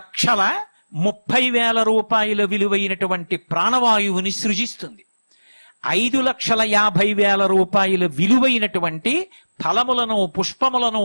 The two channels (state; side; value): inverted; both; correlation -1.00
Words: రూపాయల విలువైనటువంటి ప్రాణవాయువుని సృజిస్తుంది. 5,50,000 రూపాయల విలువైనటువంటి ఫలములను, పుష్పములను,